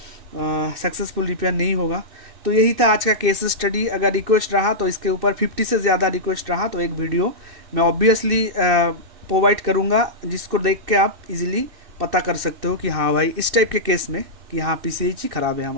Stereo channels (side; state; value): left; late; 2.6 ms